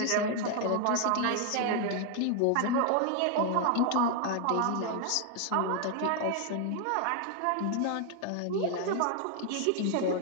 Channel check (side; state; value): both; different; correlation 0.00